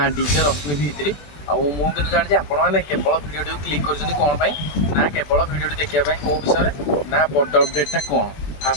डीजे रश्मि भित्री मुझे जानी आपने केवल भिडियो क्लिक कर कौन ना केवल भिडियो देखापी कौ विषय ना बड़ अपडेटा कौन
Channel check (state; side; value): late; right; 21 ms